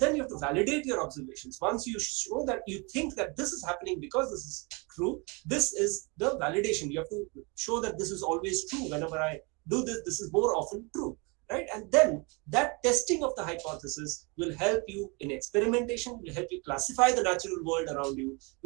you have to validate your observations. Once you show that you think that this is happening because this is true, this is the validation. You have to show that this is always true. Whenever I do this, this is more often true, right? And then that testing of the hypothesis will help you in experimentation, will help you classify the natural world around you,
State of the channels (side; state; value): left; quieter; 30.0 dB